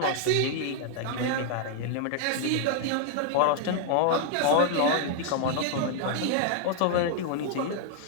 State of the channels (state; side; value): different; both; correlation 0.00